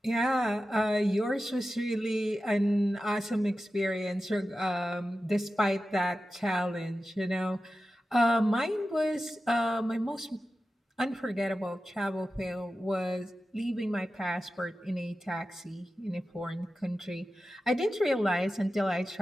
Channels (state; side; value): normal; both; correlation 0.93